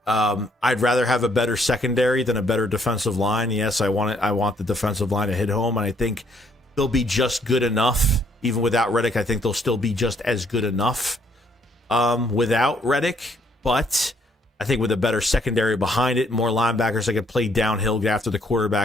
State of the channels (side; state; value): both; normal; correlation 0.68